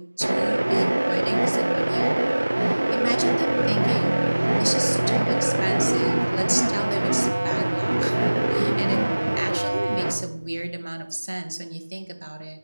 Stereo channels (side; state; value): both; inverted; correlation -1.00